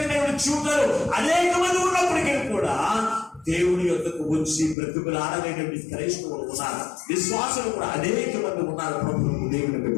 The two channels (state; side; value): drops out; right; at 4.8 s